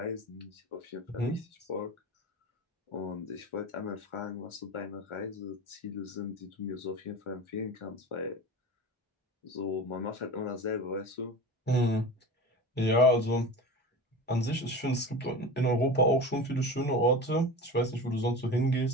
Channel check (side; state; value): both; normal; correlation 0.31